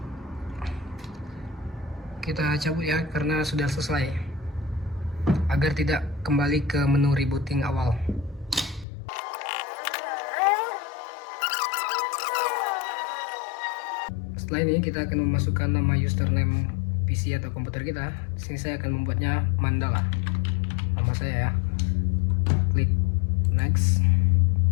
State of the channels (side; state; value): right; drops out; at 8.8 s